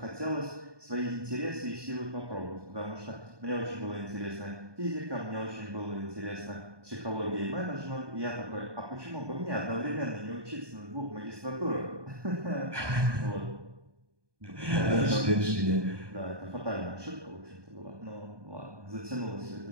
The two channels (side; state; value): left; late; 1.2 ms